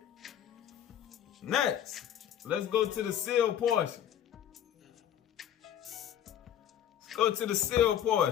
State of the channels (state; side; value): quieter; right; 10.2 dB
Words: Next, let's go to the seal portion. Let's go to the seal